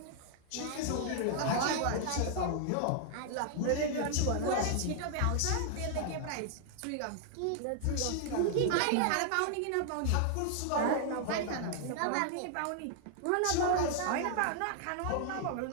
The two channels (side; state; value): both; different; correlation -0.01